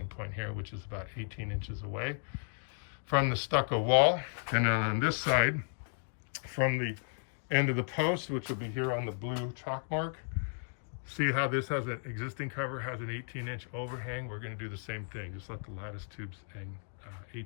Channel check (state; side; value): silent; right; digital silence